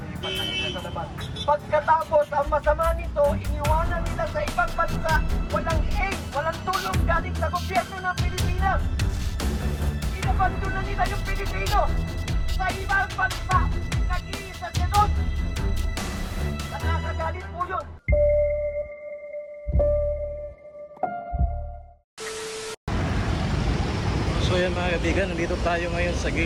na nila sa labas. Pagkatapos, ang masama nito, iniwanan nila sa ibang bansa, walang aid, walang tulong galing sa gobyerno ng Pilipinas. Inabando na nila yung Pilipino sa ibang bansa, nag-iisa siya doon. Nakakagalit po yun. So yan mga kaibigan, nandito tayo ngayon sa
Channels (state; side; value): identical; both; correlation 1.00